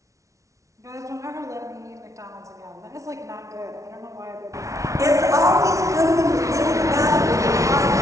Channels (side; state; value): left; late; 0.15 ms